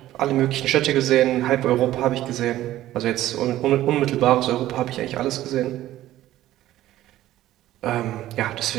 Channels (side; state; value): left; quieter; 14.3 dB